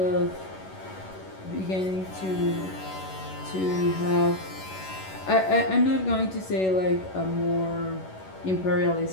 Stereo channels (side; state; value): right; late; 11 ms